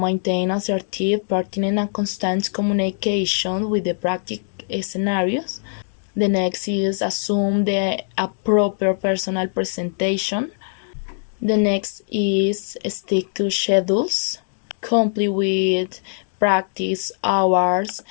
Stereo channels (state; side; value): silent; right; digital silence